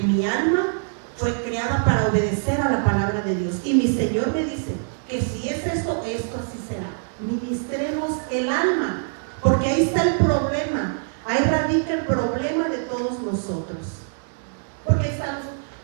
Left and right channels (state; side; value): silent; left; digital silence